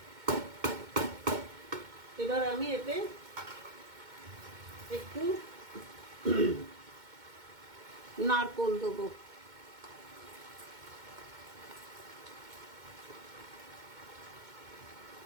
এবার আমি এতে একটু নারকোল দেবো।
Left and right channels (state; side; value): late; left; 2.2 ms